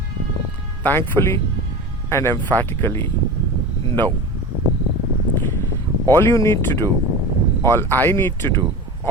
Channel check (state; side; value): normal; both; correlation 0.30